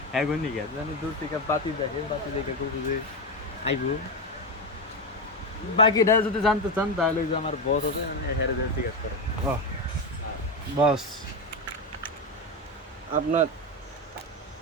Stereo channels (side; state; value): both; normal; correlation 0.13